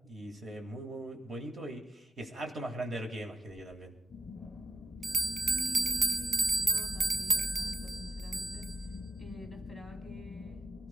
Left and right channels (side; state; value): both; normal; correlation 0.93